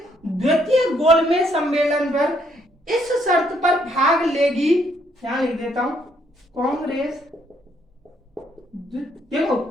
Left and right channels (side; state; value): both; normal; correlation 0.70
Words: द्वितीय गोलमेज सम्मेलन पर इस शर्त पर भाग लेगी, यहां लिख देता हूं, कांग्रेस देखो